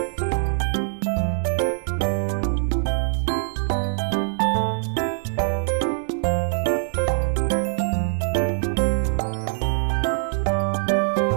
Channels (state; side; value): silent; left; digital silence